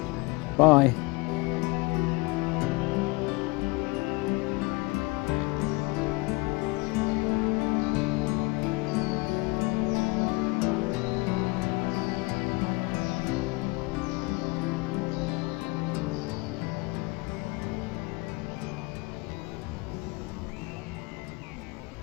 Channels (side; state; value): right; quieter; 25.0 dB